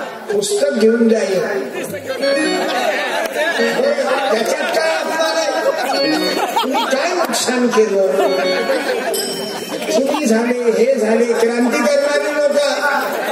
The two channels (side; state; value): both; identical; correlation 1.00